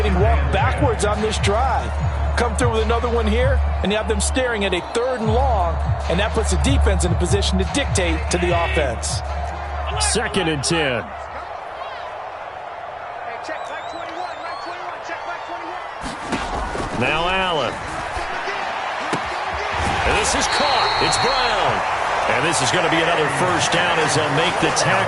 walked backwards on this drive. Come through with another one here, and you have them staring at a 3rd and long, and that puts the defense in a position to dictate to the offense. 2nd and 10. Now Allen. And this is caught. It's Brown. And this is going to be another first down as they'll make the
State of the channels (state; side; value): identical; both; correlation 1.00